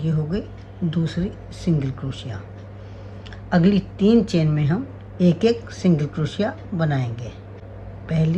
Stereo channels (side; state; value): both; identical; correlation 1.00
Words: हो गई दूसरी सिंगल क्रोशिया। अगली 3 चेन में हम एक सिंगल क्रोशिया बनाएंगे।